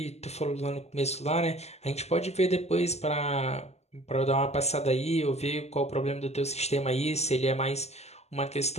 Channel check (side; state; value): right; late; 0.31 ms